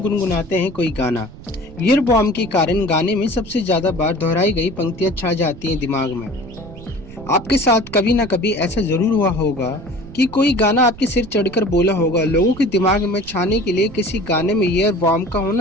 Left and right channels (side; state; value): right; noise; rumble, 17 dB below the sound